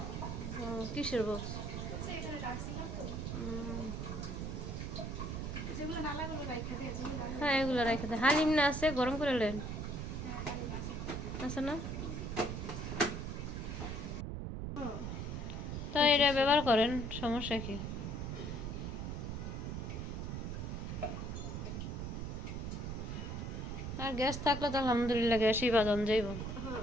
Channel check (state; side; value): noise; right; rumble, 4 dB below the sound